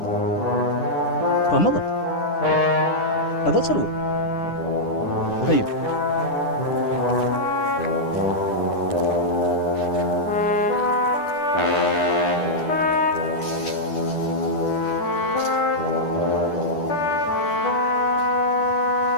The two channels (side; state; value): right; late; 10 ms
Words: فمضى هذا تصلوا طيب